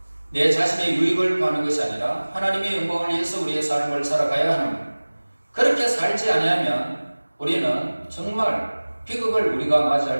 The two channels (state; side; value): inverted; both; correlation -1.00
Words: 내 자신의 유익을 구하는 것이 아니라 하나님의 영광을 위해서 우리의 삶을 살아가야 하는, 그렇게 살지 아니하면 우리는 정말 비극을 우리가